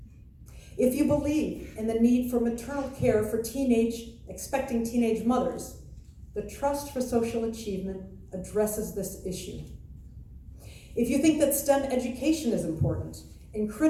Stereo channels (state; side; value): identical; both; correlation 1.00